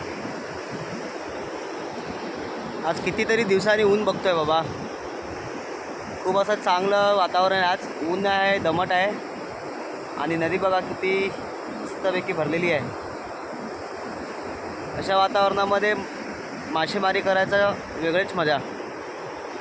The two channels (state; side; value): identical; both; correlation 1.00